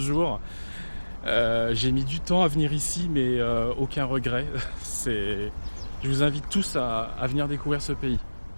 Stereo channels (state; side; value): inverted; both; correlation -1.00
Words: J'ai mis du temps à venir ici, mais aucun regret. Je vous invite tous à venir découvrir ce pays.